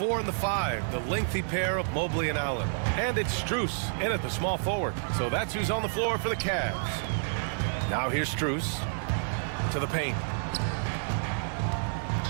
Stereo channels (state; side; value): silent; left; digital silence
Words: and the 5, the lengthy pair of Mobley and Allen. And it's Strus in at the small forward. So that's who's on the floor for the Cavs. Now here's Strus to the paint.